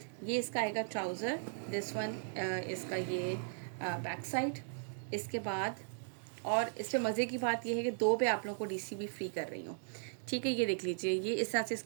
ये इसका आएगा ट्राउज़र, दिस वन इसका ये बैक साइड। इसके बाद और इससे मज़े की बात यह है कि 2 पे आप लोगों को डीसी भी फ्री कर रही हूँ, ठीक है? ये देख लीजिए, ये इस तरह से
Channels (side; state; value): left; silent; digital silence